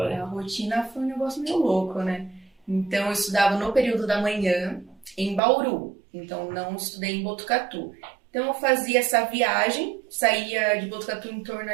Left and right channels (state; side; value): drops out; left; at 5.4 s